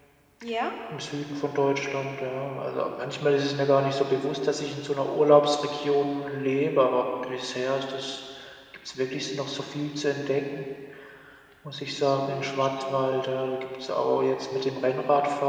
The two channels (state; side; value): identical; both; correlation 1.00